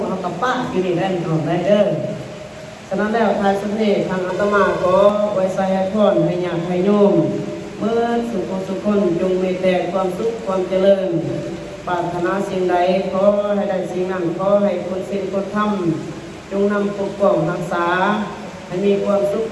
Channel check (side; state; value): both; identical; correlation 1.00